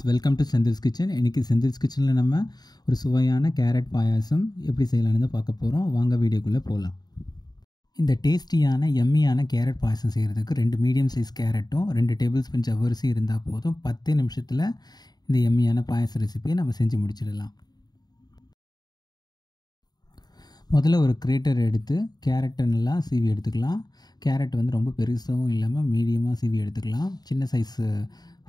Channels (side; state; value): right; late; 0.20 ms